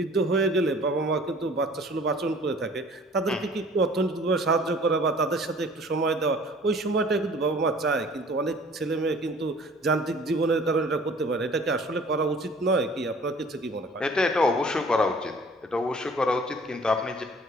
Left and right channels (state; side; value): normal; both; correlation 0.50